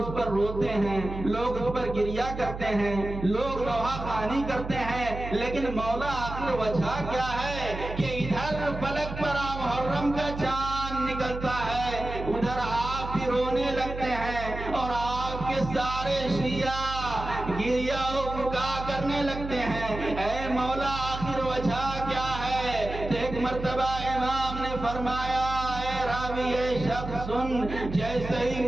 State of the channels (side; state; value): right; noise; hum, 8 dB below the sound